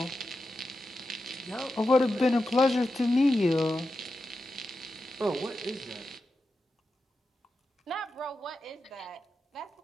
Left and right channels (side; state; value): both; normal; correlation 0.90